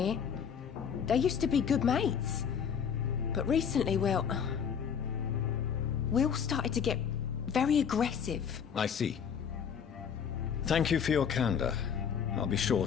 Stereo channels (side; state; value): right; quieter; 7.4 dB